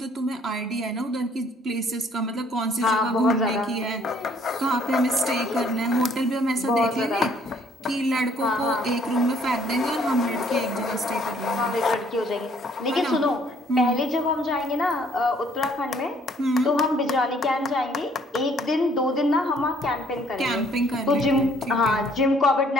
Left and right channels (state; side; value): normal; both; correlation 0.62